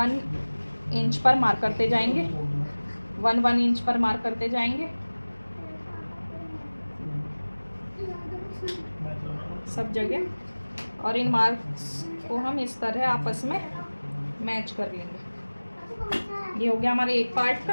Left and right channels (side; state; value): both; inverted; correlation -1.00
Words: इंच पर मार्क करते जाएंगे, 1 इंच पर मार्क करते जाएंगे सब जगह, और इन मार्क्स को हम इस तरह आपस में मैच कर लेंगे। ये हो गया हमारे एक पार्ट